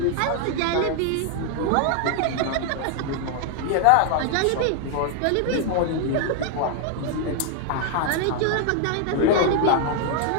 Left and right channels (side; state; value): both; different; correlation 0.00